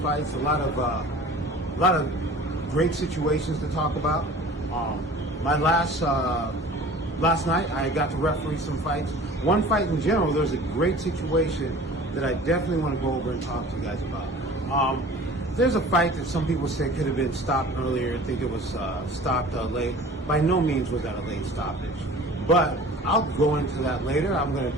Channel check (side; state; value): both; normal; correlation 0.43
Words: A lot of great situations to talk about. My last night, I got to referee some fights. One fight in general, there's a great situation that I definitely want to go over and talk to you guys about. There's a fight that some people say could have been stopped earlier. I think it was stopped late. By no means was that a late stoppage. But I'll go into that later. I'm going to